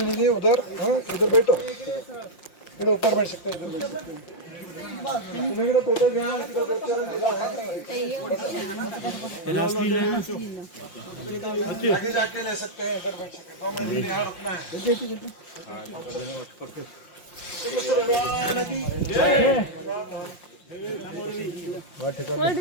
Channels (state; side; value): late; right; 5.7 ms